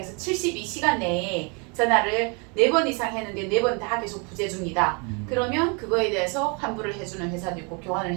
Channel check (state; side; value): quieter; left; 33.3 dB